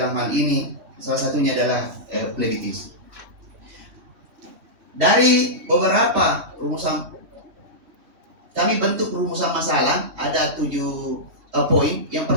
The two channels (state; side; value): late; left; 3.1 ms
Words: hal ini salah satunya adalah plebitis. Dari beberapa rumusan, kami bentuk rumusan masalah, ada 7 poin. Yang